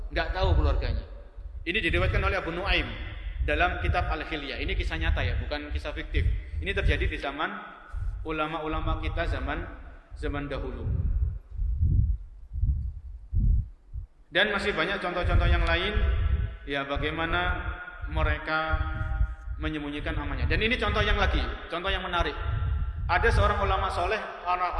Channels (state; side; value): identical; both; correlation 1.00